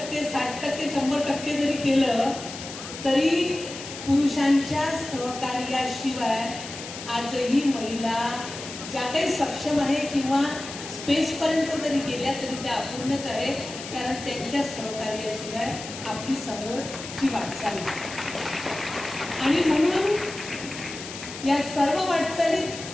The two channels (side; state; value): left; noise; hiss, 11 dB below the sound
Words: 60%, 100% जरी केलं तरी पुरुषांच्या सहकार्याशिवाय आजही महिला ज्या काही सक्षम आहे किंवा स्पेसपर्यंत जरी गेल्या तरी त्या अपूर्णच आहे, कारण त्यांच्या सहकार्याशिवाय आपली समोरची वाटचाल आणि म्हणून या सर्व वाटचालीत